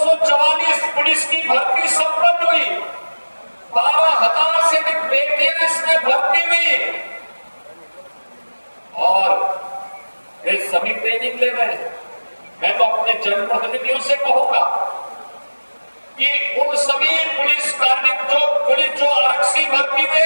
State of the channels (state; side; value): inverted; both; correlation -1.00